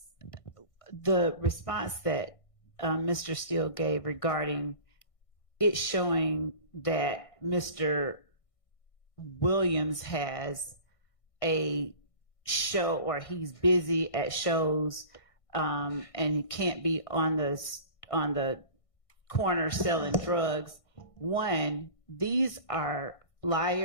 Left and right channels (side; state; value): right; late; 1.6 ms